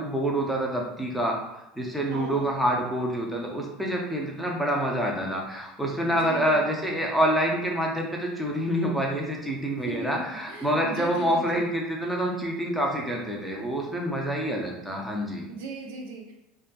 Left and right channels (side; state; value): both; normal; correlation 0.52